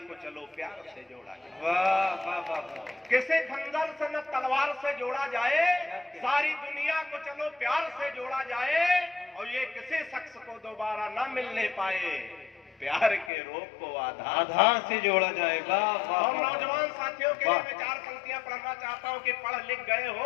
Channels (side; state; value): right; drops out; at 13.3 s